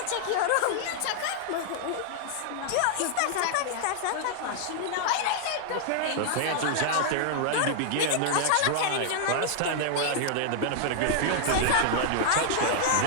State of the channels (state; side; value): different; both; correlation -0.01